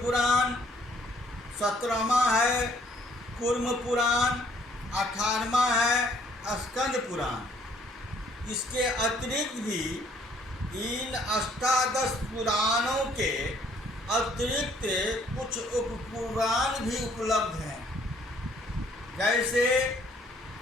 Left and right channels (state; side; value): normal; both; correlation 0.63